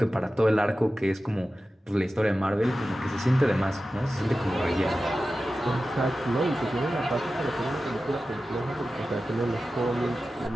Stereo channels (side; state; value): both; normal; correlation 0.94